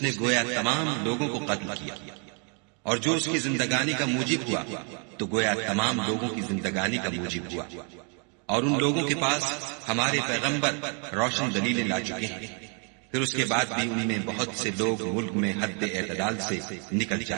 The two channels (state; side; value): quieter; left; 38.2 dB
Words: نے گویا تمام لوگوں کو قتل کیا، اور جو اس کی زندگانی کا موجب ہوا تو گویا تمام لوگوں کی زندگانی کا موجب ہوا۔ اور ان لوگوں کے پاس ہمارے پیغمبر روشن دلیلیں لا چکے ہیں، پھر اس کے بعد بھی ان میں بہت سے لوگ ملک میں حد اعتدال سے نکل